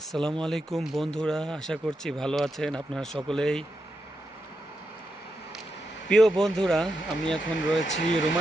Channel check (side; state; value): both; normal; correlation 0.85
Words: আলাইকুম বন্ধুরা, আশা করছি ভালো আছেন আপনারা সকলেই। প্রিয় বন্ধুরা, আমি এখন রয়েছি